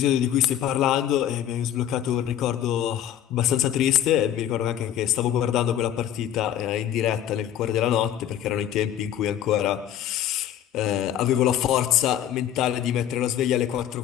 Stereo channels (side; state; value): right; quieter; 10.9 dB